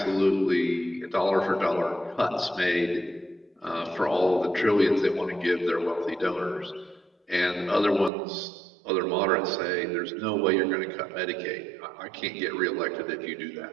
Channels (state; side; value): drops out; left; at 8.1 s